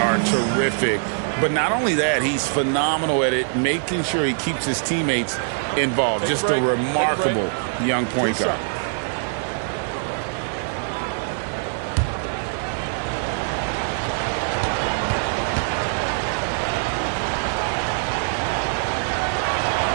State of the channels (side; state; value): left; silent; digital silence